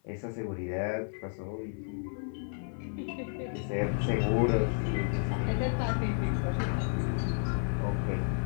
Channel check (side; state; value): right; silent; 56 dB below the other